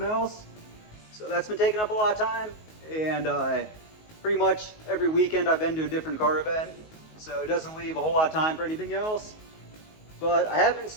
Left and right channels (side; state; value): right; late; 19 ms